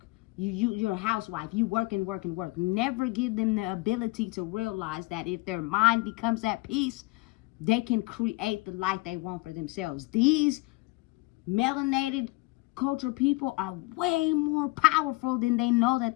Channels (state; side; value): quieter; right; 23.7 dB